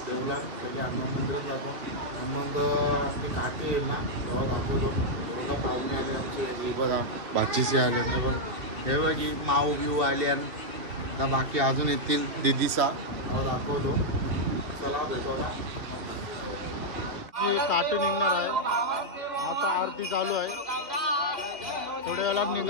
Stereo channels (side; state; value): left; late; 2.8 ms